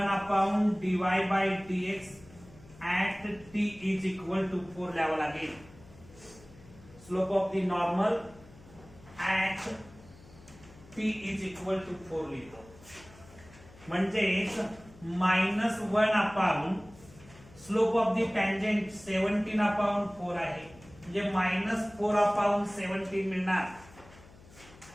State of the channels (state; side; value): noise; left; hum, 22 dB below the sound